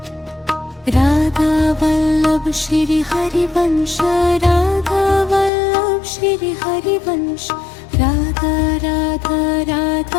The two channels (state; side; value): drops out; right; at 5.5 s